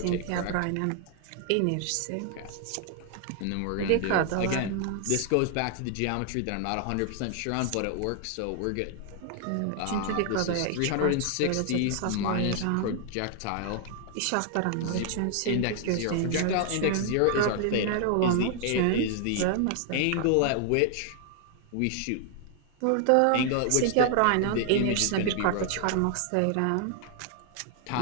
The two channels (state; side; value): different; both; correlation 0.00